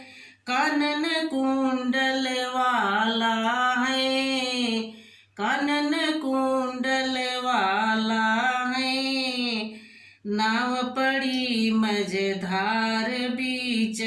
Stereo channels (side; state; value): both; identical; correlation 1.00